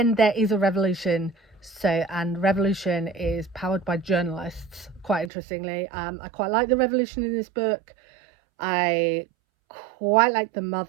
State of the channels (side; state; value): left; drops out; at 5.3 s